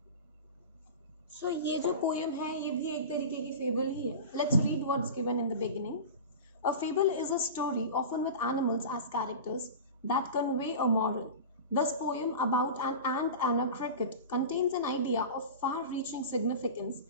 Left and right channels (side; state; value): both; inverted; correlation -0.31